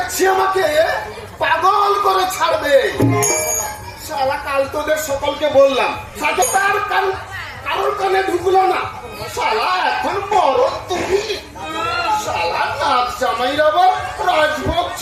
আমাকে পাগল করে ছাড়বে। শালা কাল তোদের সকলকে বললাম, সাথে তার কারোর কানে ঢুকলো না। শালা এখন বড় তুমি। শালা নাচ জামাইর আবার রাজভোগ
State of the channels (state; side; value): identical; both; correlation 1.00